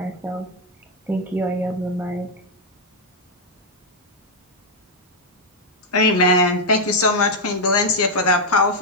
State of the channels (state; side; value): normal; both; correlation -0.02